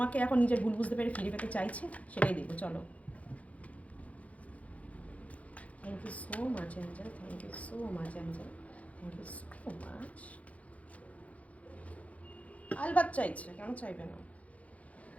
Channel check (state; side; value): late; right; 0.067 ms